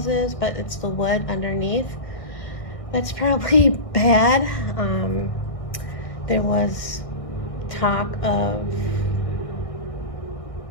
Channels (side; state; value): right; late; 1.6 ms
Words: but it's the wood underneath that's probably bad. There was talk of,